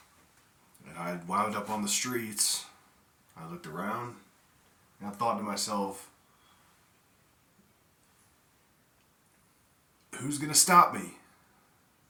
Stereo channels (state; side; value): identical; both; correlation 1.00